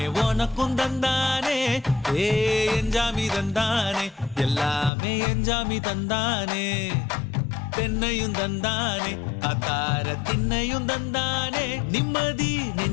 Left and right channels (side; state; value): right; drops out; at 4.9 s